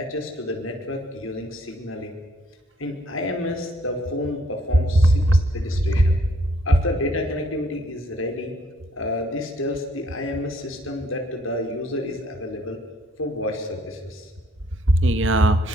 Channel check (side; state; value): both; normal; correlation 0.66